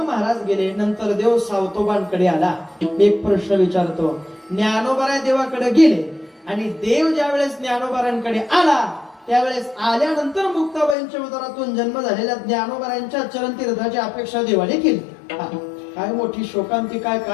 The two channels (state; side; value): drops out; right; at 11.0 s